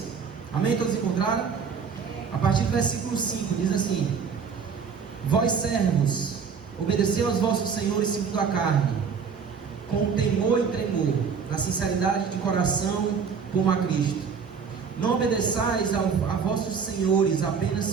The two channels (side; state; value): left; quieter; 6.1 dB